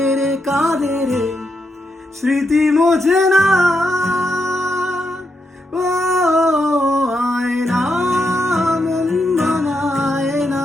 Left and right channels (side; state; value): both; normal; correlation 0.82